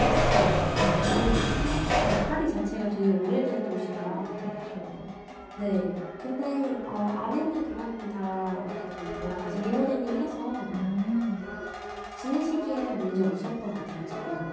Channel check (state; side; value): identical; both; correlation 1.00